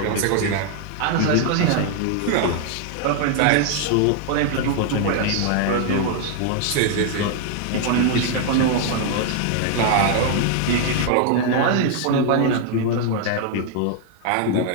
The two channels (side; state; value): both; different; correlation 0.00